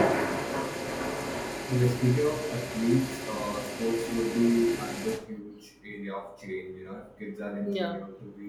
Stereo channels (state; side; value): identical; both; correlation 1.00